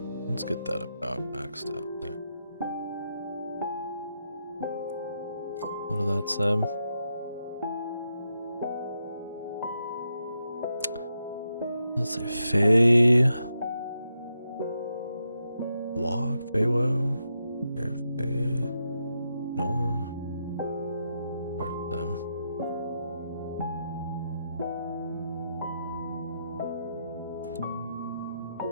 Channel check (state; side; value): inverted; both; correlation -0.83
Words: Let's get that about maxed out there. What did that say? Let's say Fey Walk, Feywo, Fey Norm. Part of them.